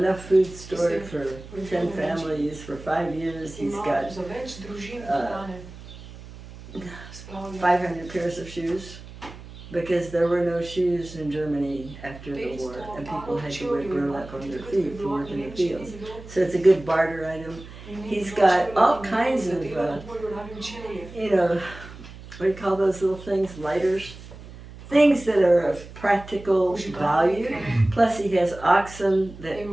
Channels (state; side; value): noise; right; hum, 16 dB below the sound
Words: food stored for 10 families for 5 years. He's ima got za več družin hrane. Spravlja. 500 pairs of shoes because there were no shoes in Germany after the war, and people had to wear burlap on their feet to work in the fields. So it's a good barter item. He's got all kinds of, you know, what do you call those little things? Lighters? Things that are of practical value. Plus he has oxen that